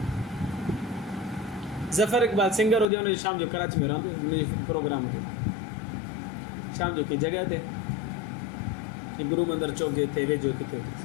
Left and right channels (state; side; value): drops out; right; at 2.9 s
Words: ज़फ़र इक़बाल सिंगर हुजे, हुनजो शाम जो कराची में रहंदो, हुनजो प्रोग्राम हुजे शाम जो कंहिं जॻह ते, गुरु मंदर चौक जे हिते वेझो किथे हुजे।